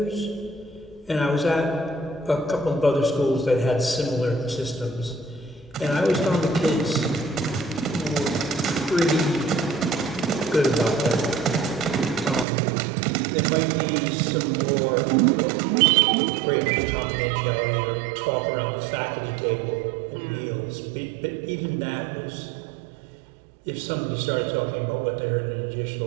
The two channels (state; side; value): drops out; left; at 12.5 s